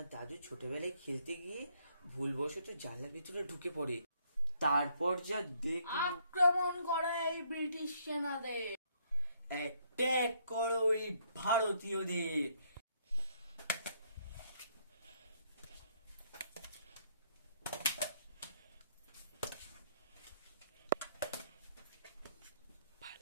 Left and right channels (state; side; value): inverted; both; correlation -0.69